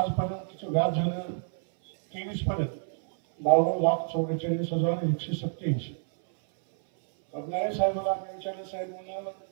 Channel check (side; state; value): left; silent; 59 dB below the other